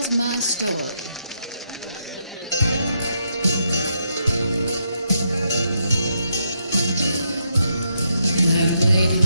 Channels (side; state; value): both; inverted; correlation -0.79